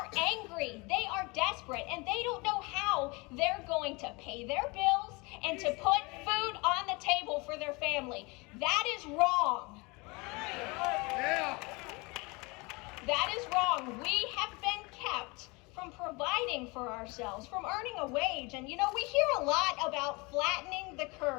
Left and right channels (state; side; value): quieter; right; 26.6 dB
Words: angry. They are desperate. And they don't know how they're going to pay their bills and to put food on the table for their family. That is wrong. Yeah. That is wrong. We have been kept from providing for ourselves, from earning a wage. And, you know, we hear a lot about flattening the